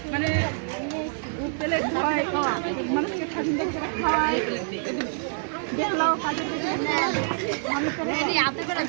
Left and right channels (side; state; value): left; silent; 55 dB below the other